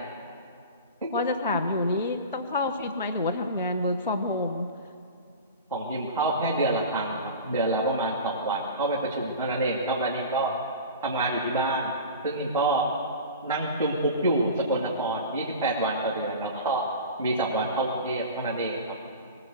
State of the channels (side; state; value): both; inverted; correlation -0.33